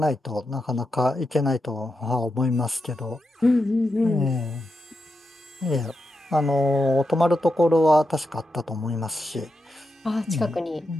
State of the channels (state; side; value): normal; both; correlation 0.87